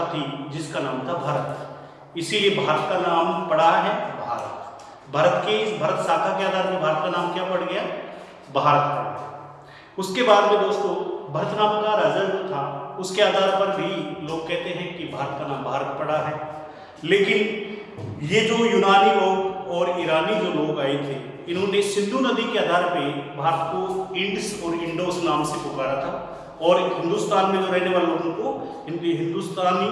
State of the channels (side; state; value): both; identical; correlation 1.00